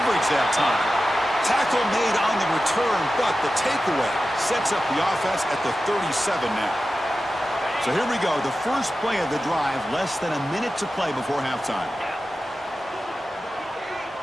that time. Tackle made on the return, but the takeaway sets up the offense at the 37 now. So here we go, the first play of the drive, less than a minute to play before halftime.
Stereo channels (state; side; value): normal; both; correlation 0.93